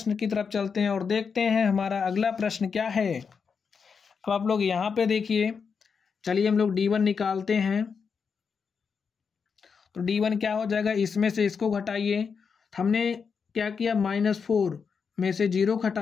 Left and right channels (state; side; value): quieter; right; 5.9 dB